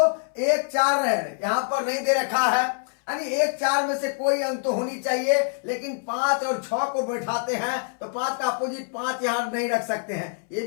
1 4 है, यहां पर नहीं दे रखा है, यानी 1 4 में से कोई अंक तो होनी चाहिए, लेकिन 5 और 6 को बैठाते हैं तो 5 का अपोजिट 5 यहां नहीं रख सकते हैं, ये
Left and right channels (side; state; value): right; silent; 62 dB below the other